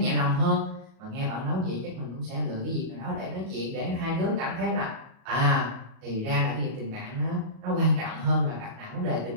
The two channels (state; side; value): late; left; 37 ms